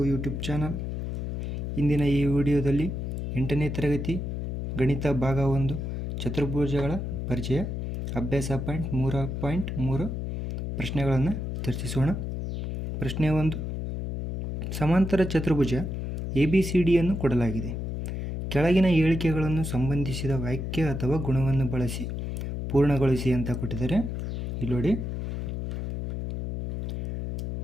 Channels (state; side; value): noise; left; hum, 4 dB below the sound